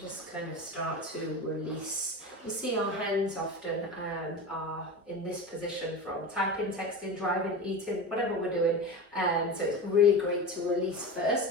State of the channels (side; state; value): both; normal; correlation 0.27